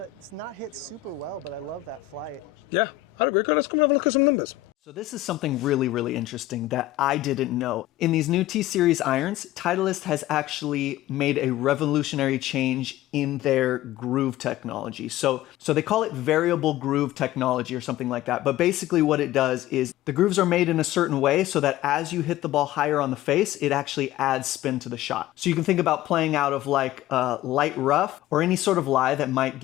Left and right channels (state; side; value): quieter; right; 14.9 dB